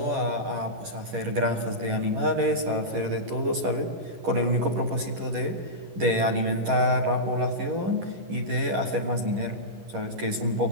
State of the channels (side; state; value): left; late; 11 ms